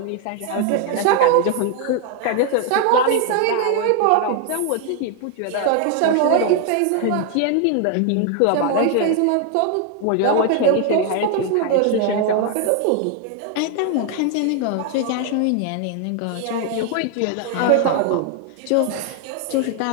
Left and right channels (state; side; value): different; both; correlation 0.00